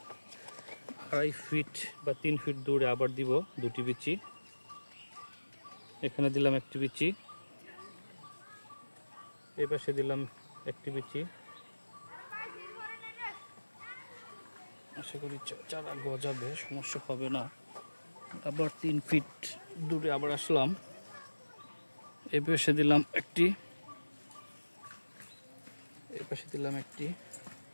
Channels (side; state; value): both; inverted; correlation -1.00